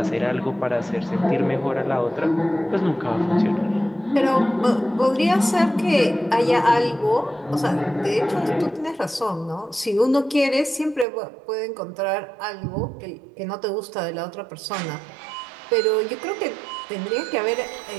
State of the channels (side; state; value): left; drops out; at 11.1 s